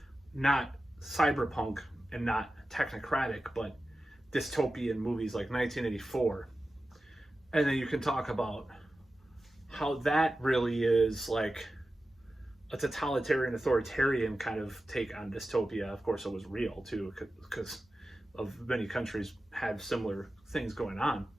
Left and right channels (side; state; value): both; normal; correlation 0.94